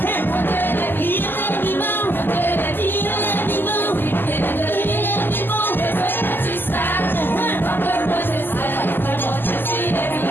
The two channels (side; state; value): right; late; 0.094 ms